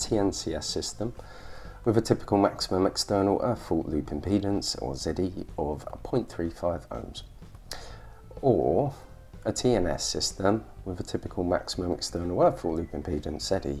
system with a typical maximum external earth fault loop impedance, or ZE, of 0.35 ohms, or a TNS system with a typical maximum external earth fault loop impedance,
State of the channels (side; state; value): both; identical; correlation 1.00